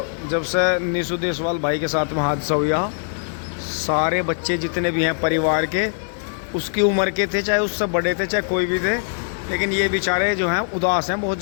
जब से निशु देशवाल भाई के साथ में हादसा हुआ, सारे बच्चे जितने भी हैं परिवार के, उसकी उम्र के थे, चाहे उससे बड़े थे, चाहे कोई भी थे, लेकिन ये बेचारे जो हैं उदास हैं बहुत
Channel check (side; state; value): right; silent; digital silence